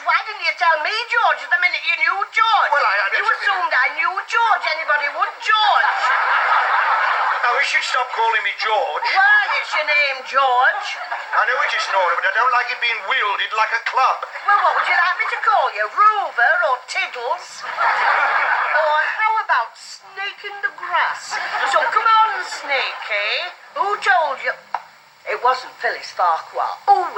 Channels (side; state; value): both; identical; correlation 1.00